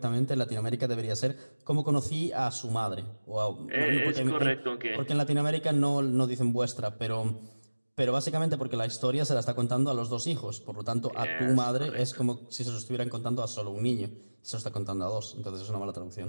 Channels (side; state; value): both; inverted; correlation -1.00